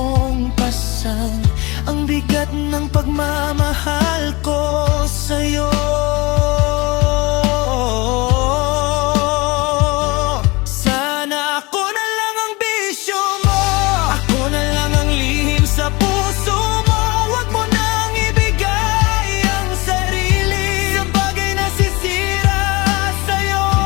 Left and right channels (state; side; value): quieter; right; 24.4 dB